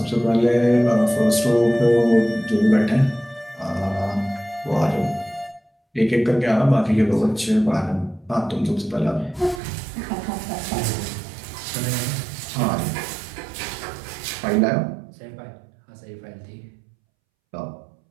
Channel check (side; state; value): left; drops out; at 9.6 s